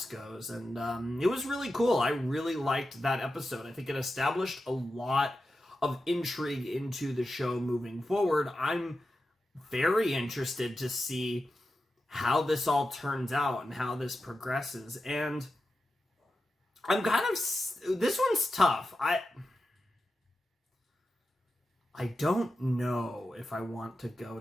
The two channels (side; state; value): both; normal; correlation 0.91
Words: goes. And it was really cool. I really liked that episode. I think it established a lot of intrigue into the show moving forward. I'm very interested to see how this all turns out and how this progresses. And I'm kind of, this one's tough. I don't know if I want to go